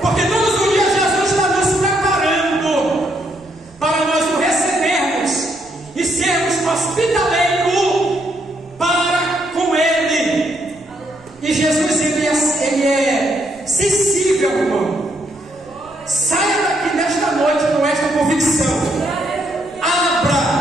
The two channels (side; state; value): right; noise; rumble, 28 dB below the sound